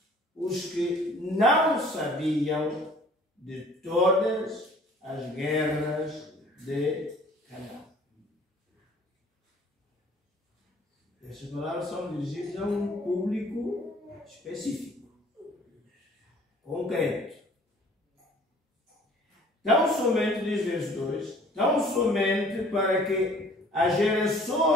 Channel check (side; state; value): both; normal; correlation 0.53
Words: os que não sabiam de todas as guerras de Canaã. Essas palavras são dirigidas a um público específico, concreto. Tão somente, diz verso 2, tão somente para que as